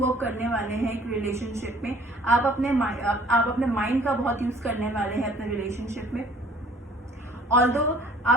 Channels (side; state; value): both; normal; correlation 0.55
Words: करने वाले हैं एक रिलेशनशिप में। आप अपने माइंड का बहुत यूज़ करने वाले हैं अपने रिलेशनशिप में। ऑल्दो